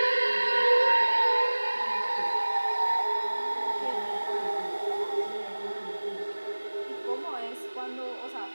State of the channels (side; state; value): both; inverted; correlation -1.00